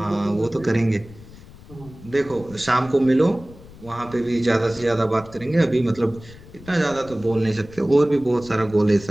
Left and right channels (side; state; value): left; noise; rumble, 19 dB below the sound